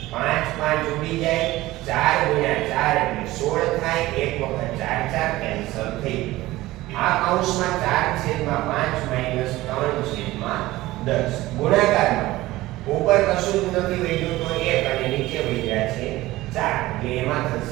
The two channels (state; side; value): quieter; left; 17.7 dB